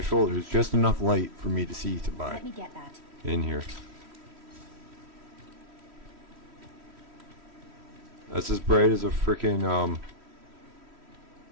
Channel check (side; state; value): left; late; 3.1 ms